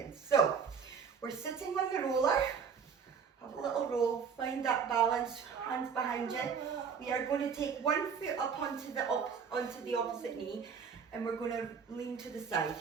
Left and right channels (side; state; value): left; quieter; 6.4 dB